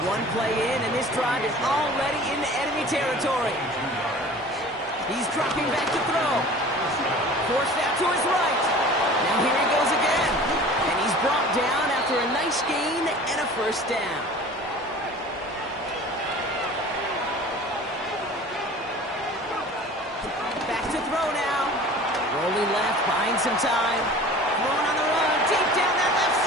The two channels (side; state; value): both; normal; correlation 0.42